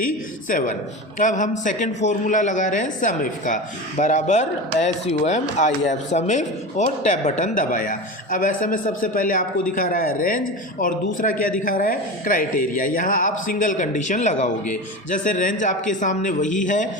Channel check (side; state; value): both; normal; correlation 0.26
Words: अब हम सेकंड फॉर्मूला लगा रहे हैं सम इफ का, बराबर SUMIF सम इफ, और टैब बटन दबाया। अब ऐसे में सबसे पहले आपको दिखा रहा है रेंज, और दूसरा क्या दिखा रहा है, क्राइटेरिया। यहाँ आप सिंगल कंडीशन लगाओगे। जैसे रेंज आपके सामने वही